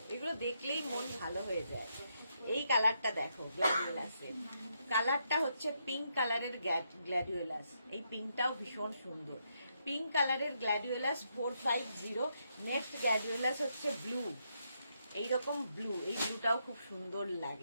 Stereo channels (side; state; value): both; inverted; correlation -0.79